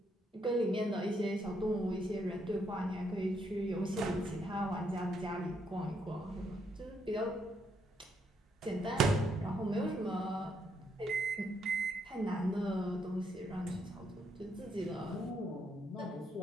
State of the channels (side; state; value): both; normal; correlation 0.75